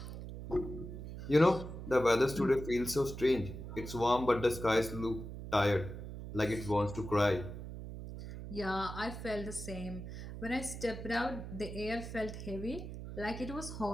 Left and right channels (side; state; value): right; noise; hum, 9 dB below the sound